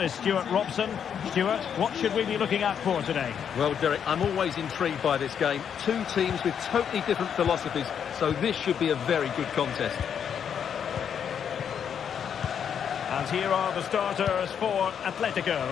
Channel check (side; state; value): right; quieter; 8.0 dB